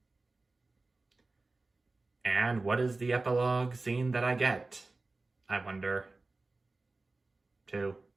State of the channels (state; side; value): quieter; left; 3.4 dB